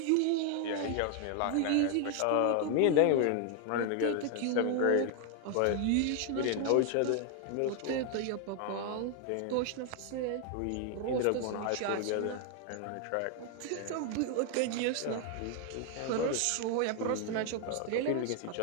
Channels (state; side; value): different; both; correlation 0.00